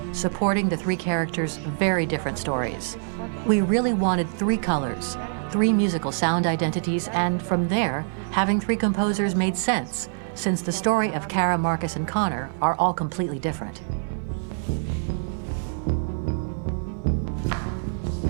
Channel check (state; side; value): silent; left; 62 dB below the other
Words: supporting the 3 characters' very different stories. We really wanted 3 colors, 3 musical sound identities, and from there, having 3 composers made sense, since the story of Kara, Marcus, and Connor are all completely different.